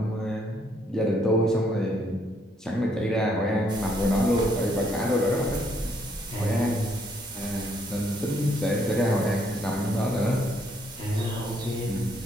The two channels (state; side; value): normal; both; correlation 0.70